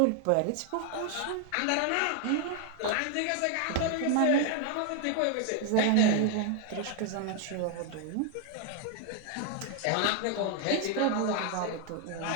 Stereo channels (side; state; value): both; different; correlation 0.00